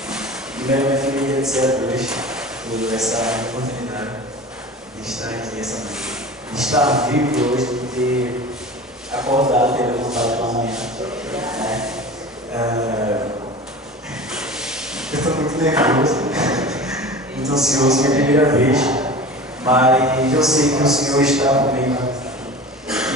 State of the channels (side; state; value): both; normal; correlation 0.36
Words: Primeiramente, eu queria agradecer a Deus por essa oportunidade de estar aqui essa noite. De estar vivo hoje, de ter acordado, ter levantado pela manhã. Eu estou muito nervoso, muito ansioso, minha primeira vez. Mas eu sei que o Senhor está comigo